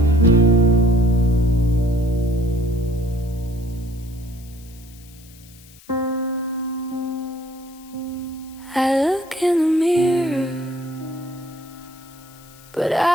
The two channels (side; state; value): left; noise; hiss, 24 dB below the sound